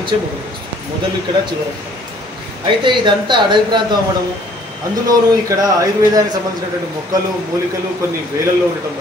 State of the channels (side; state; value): both; normal; correlation 0.58